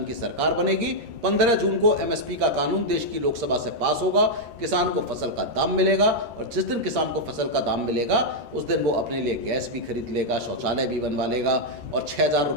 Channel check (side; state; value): left; late; 13 ms